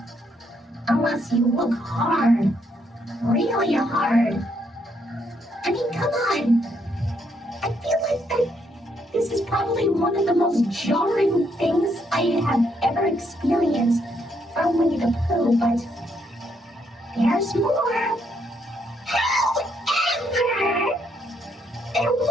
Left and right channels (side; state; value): both; normal; correlation 0.74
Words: Unless you look hard. Really hard. I mean, come on. I feel like that this is probably one of the most jarring things I have ever experienced from Winnie the Pooh, but there's more. However, there